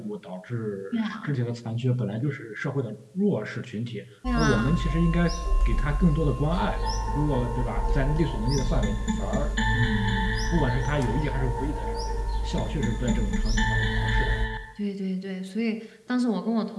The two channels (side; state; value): both; identical; correlation 1.00